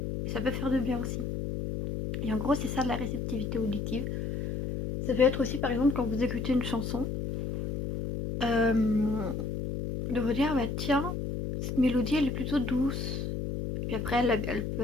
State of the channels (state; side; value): noise; left; hum, 3 dB below the sound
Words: Et ça peut faire de bien aussi. Et en gros, c'est ça de la réceptivité auditive. Ça peut être aussi, par exemple, quand vous écoutez une chanson, de vous dire, bah tiens, cette mélodie, elle est plutôt douce. Puis après, elle